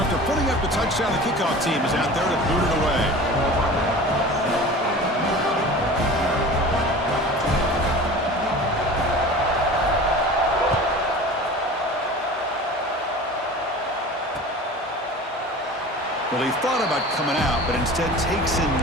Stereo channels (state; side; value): normal; both; correlation 0.38